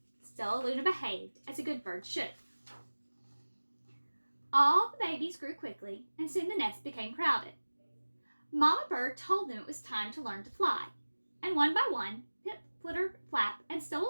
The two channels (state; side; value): inverted; both; correlation -1.00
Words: Stellaluna behaved as a good bird should. All the babies grew quickly, and soon the nest became crowded. Mama Bird told them it was time to learn to fly, and one by one, Pip, Flitter, Flap, and